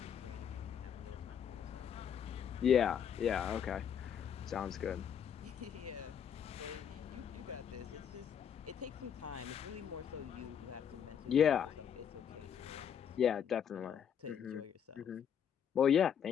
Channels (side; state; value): right; quieter; 8.3 dB